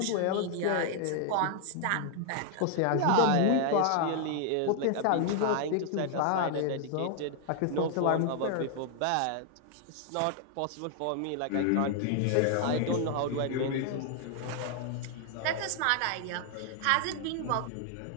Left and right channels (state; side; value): different; both; correlation 0.00